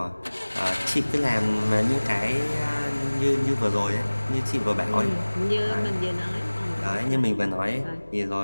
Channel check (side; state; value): both; inverted; correlation -1.00